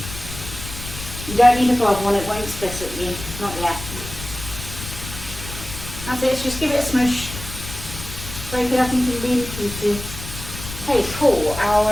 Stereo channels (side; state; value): left; noise; rumble, 11 dB below the sound